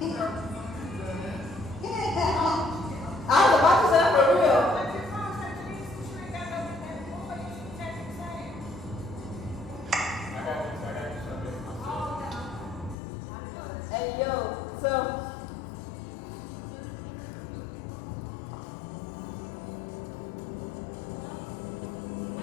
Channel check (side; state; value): right; drops out; at 13.0 s